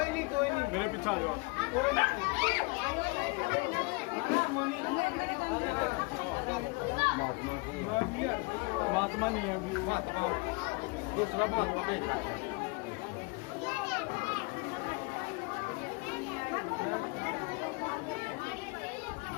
नहीं मेरे पीछे आ जाओ। महात्मा नहीं है अभी, महात्मा दूसरा महात्मा नहीं।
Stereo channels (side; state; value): right; quieter; 28.8 dB